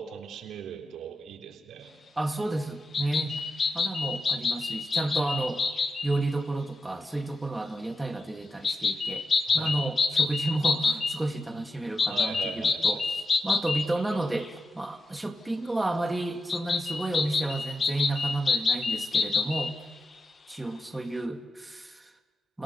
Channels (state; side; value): normal; both; correlation 0.89